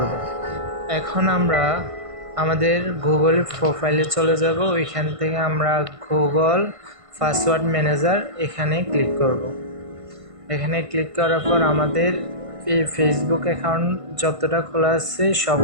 এখন আমরা আমাদের গুগল প্রোফাইলে চলে যাব। ওইখান থেকে আমরা গুগল পাসওয়ার্ড ম্যানেজার এখানে ক্লিক করব। এখানে ক্লিক করার পর আমাদের এই ফেসবুক অ্যাকাউন্ট যতটা খোলা আছে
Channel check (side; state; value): left; late; 1.5 ms